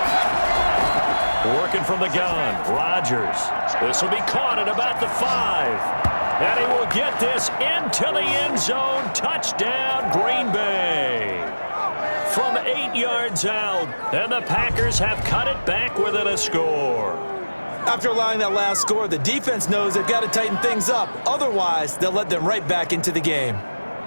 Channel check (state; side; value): inverted; both; correlation -1.00